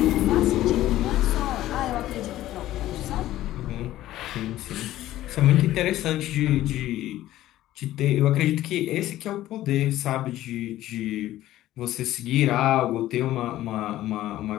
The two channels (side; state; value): right; quieter; 14.5 dB